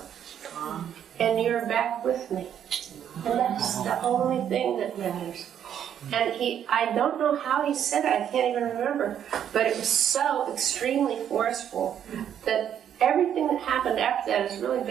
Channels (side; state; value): left; quieter; 9.4 dB